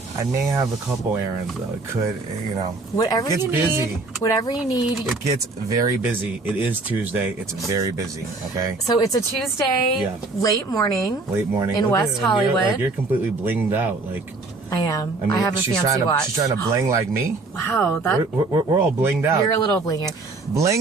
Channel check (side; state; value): left; quieter; 3.5 dB